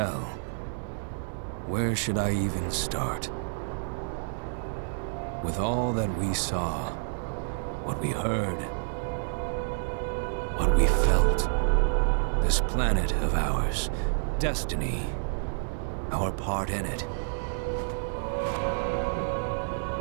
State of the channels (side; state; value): left; silent; digital silence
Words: Where should I even start? With all that we saw, what we heard, what we felt, this planet of ours, destiny, our part in it.